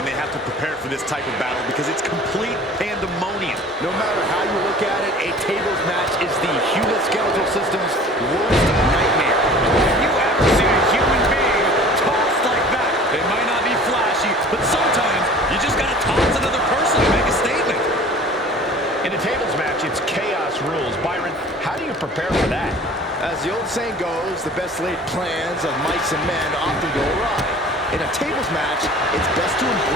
they have to prepare for this type of battle because it's complete pandemonium. No matter how you look at it, a tables match is the human skeletal system's worst nightmare. Have you ever seen a human being tossed like that? They might not be flashy, but sometimes you just gotta toss another person to make a statement. In a tables match, it's chaos rules. Byron, how do you prepare for that? As the old saying goes, the best laid plans of mice and men often go awry. In a tables match, it's best to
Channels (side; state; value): both; normal; correlation 0.45